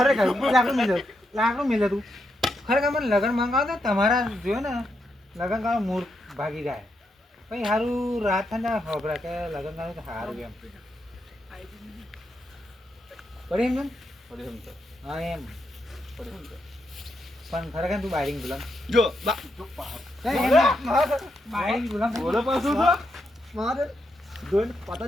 લાકડું મિલે તું ખરેખર મને લગ્ન મંગાવો તો તમારા જોયો ને લગ્ન કરવાનું મૂળ ભાગી જાય પછી સારું રાત થાય ને ખબર કે લગ્ન કરવાનું તો સારું એમ પડી એમ હા એમ પણ ખરેખર તું બાયરિંગ ગુલામ જો બાયરિંગ ગુલામ બોલો પાછું તો મારે જોઈને પતા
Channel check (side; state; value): both; normal; correlation 0.82